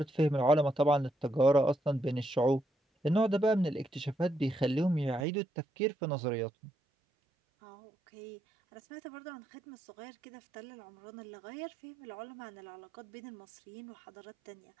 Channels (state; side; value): drops out; left; at 5.2 s